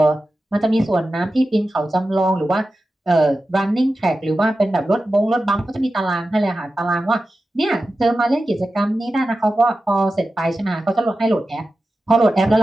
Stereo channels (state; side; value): normal; both; correlation 0.93